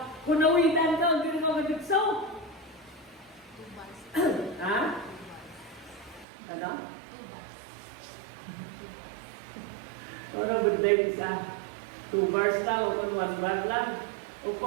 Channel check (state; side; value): drops out; left; at 6.2 s